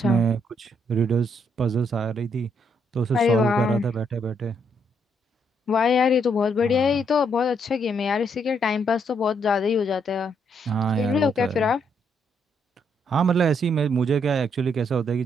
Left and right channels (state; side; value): normal; both; correlation 0.74